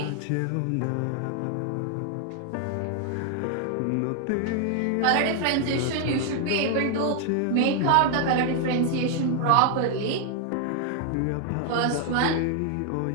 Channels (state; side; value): different; both; correlation 0.00